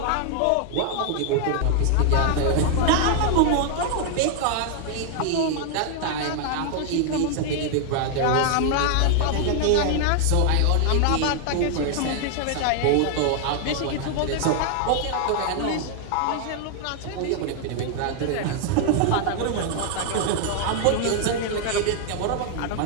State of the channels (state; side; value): different; both; correlation 0.00